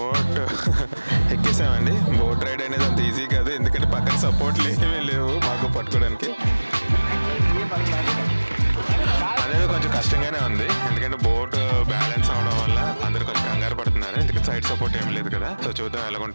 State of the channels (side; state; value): both; inverted; correlation -1.00